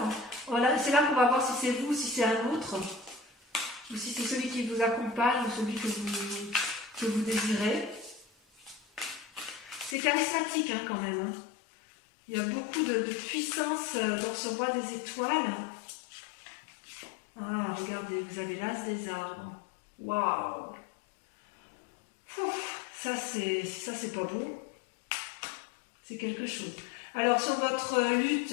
voilà, c'est là qu'on va voir si c'est vous ou si c'est un autre, ou si c'est celui qui vous accompagne ou celui que vous désirez. C'est charismatique hein, quand même. Hein. Il y a beaucoup de puissance dans ce roi des étoiles. Ah, regardez, vous avez l'as des arbres. Waouh! Ça, c'est pas beau. C'est quelque chose. Alors, sur votre lutte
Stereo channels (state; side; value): drops out; right; at 10.0 s